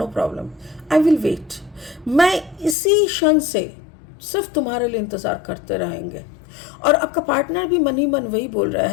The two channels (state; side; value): drops out; right; at 2.8 s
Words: problem, I will wait. मैं इसी क्षण से सिर्फ तुम्हारे लिए इंतज़ार करते रहेंगे। और आपका पार्टनर भी मन ही मन वही बोल रहा